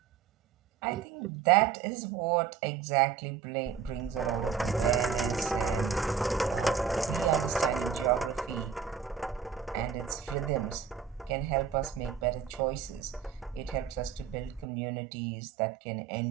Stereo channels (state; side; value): quieter; left; 7.0 dB